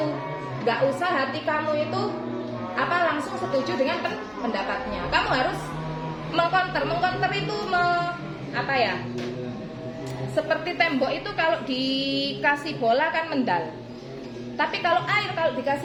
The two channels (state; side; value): identical; both; correlation 1.00